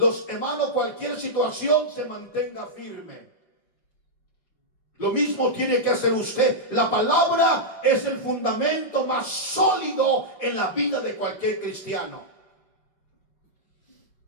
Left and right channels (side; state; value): right; late; 5.1 ms